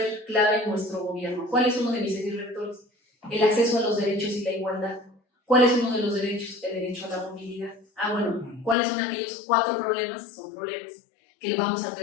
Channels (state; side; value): drops out; right; at 8.8 s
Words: clave en nuestro gobierno. ¿Cuál es uno de mis ejes rectores? El acceso a los derechos y la igualdad. ¿Cuál es uno de los derechos? El derecho a la movilidad. Bueno, ¿cuáles son aquellos 4 problemas? Son problemas que vamos a